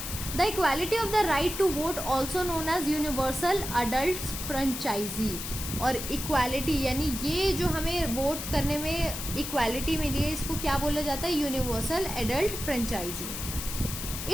The equality of the right to vote also known as universal adult franchise. और इक्वालिटी यानी ये जो हमें वोट करने में इक्वालिटी मिली है, इसको क्या बोला जाता है universal adult franchise.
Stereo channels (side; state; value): left; noise; hiss, 6 dB below the sound